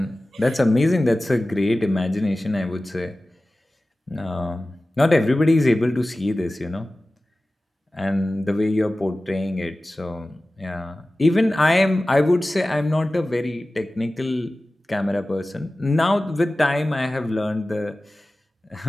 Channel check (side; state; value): both; normal; correlation 0.96